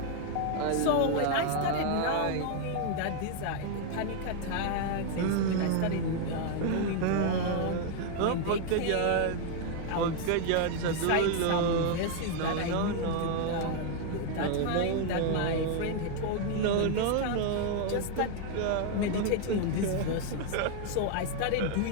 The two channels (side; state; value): both; different; correlation 0.00